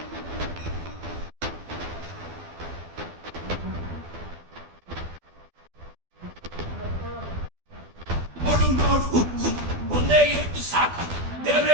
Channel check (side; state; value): left; late; 12 ms